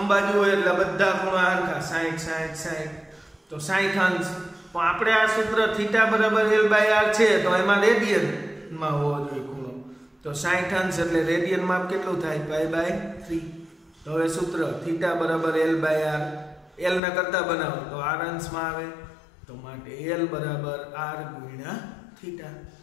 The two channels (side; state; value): right; drops out; at 17.0 s